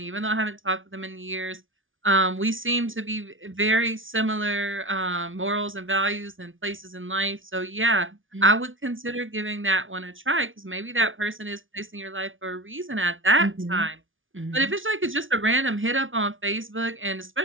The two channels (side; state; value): left; late; 0.57 ms